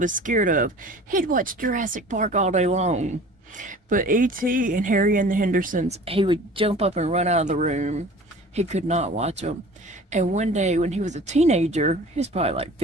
scared of. He'd watch Jurassic Park all day long. But E.T. and Harry and the Hendersons, he would jump up and run out of the room. He could not watch them. And one day when he was a teenager, he was probably like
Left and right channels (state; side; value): normal; both; correlation 0.44